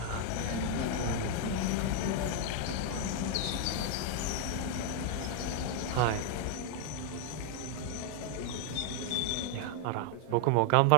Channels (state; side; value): different; both; correlation 0.00